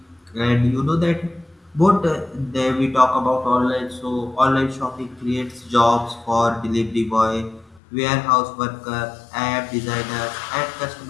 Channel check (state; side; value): drops out; right; at 7.8 s